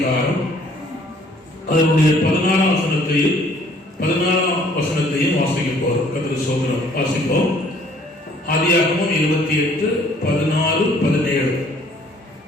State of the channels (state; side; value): normal; both; correlation 0.59